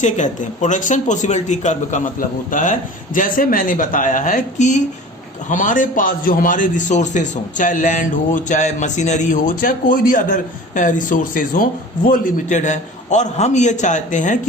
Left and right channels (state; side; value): normal; both; correlation 0.40